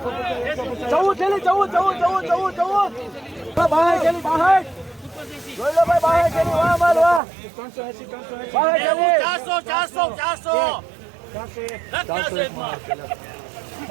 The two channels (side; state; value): left; drops out; at 7.2 s